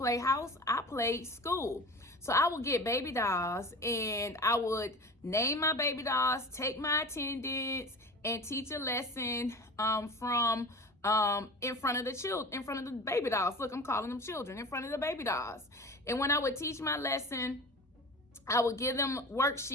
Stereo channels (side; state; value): both; normal; correlation 0.36